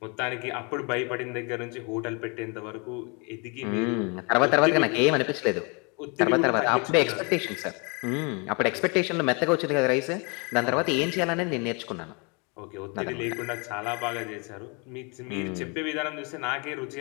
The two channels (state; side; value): quieter; right; 32.2 dB